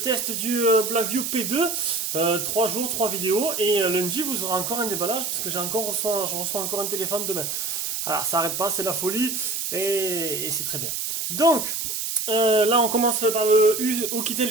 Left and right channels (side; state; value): right; noise; hiss, 2 dB below the sound